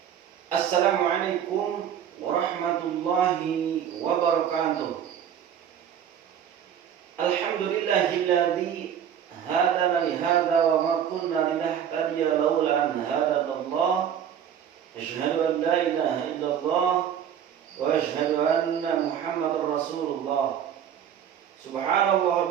Assalamualaikum warahmatullahi wabarakatuh. Alhamdulillahilladzi hadana li hadza wa ma kunna linahtadiya laula an hadanallah. Asyhadu an la ilaha illallah wa asyhadu anna Muhammadar Rasulullah. Subhanallah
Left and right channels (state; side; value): quieter; left; 9.1 dB